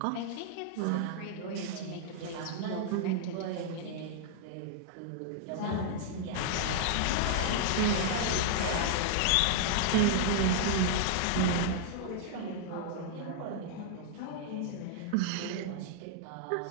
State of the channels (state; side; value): different; both; correlation -0.01